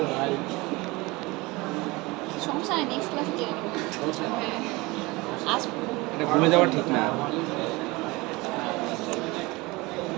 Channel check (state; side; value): quieter; left; 23.1 dB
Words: সমস্যা নেই, নেক্সট ক্লাসে জেনে নেব। আজ এটা ভুলে যাওয়া ঠিক না।